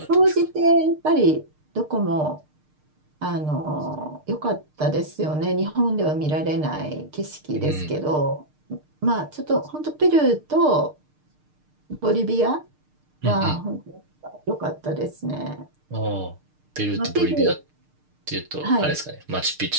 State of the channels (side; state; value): left; late; 6.6 ms